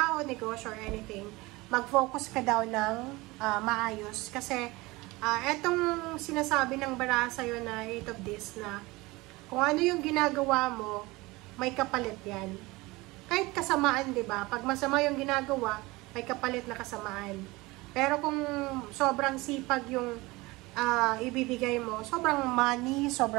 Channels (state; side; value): quieter; left; 22.0 dB